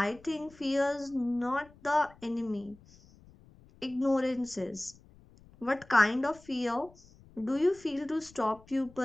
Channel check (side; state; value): left; noise; rumble, 25 dB below the sound